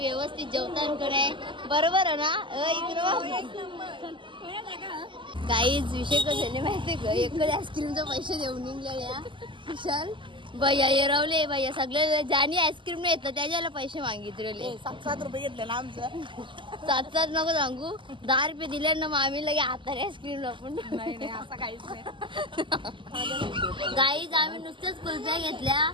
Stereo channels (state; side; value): late; left; 0.24 ms